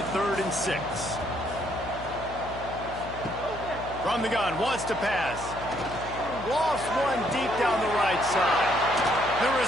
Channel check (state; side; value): noise; left; hum, 12 dB below the sound